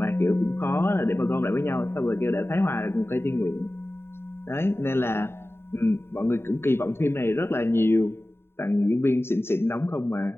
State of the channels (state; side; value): late; right; 0.11 ms